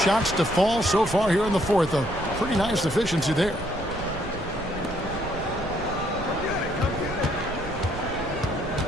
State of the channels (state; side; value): noise; right; rumble, 11 dB below the sound